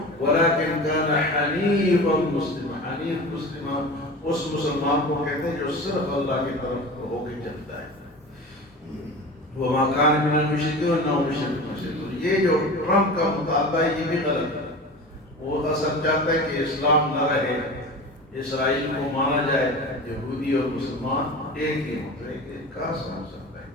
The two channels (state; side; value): normal; both; correlation 0.33